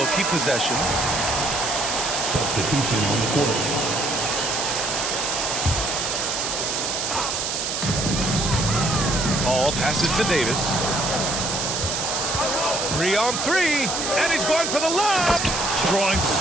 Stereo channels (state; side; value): noise; right; hiss, 1 dB below the sound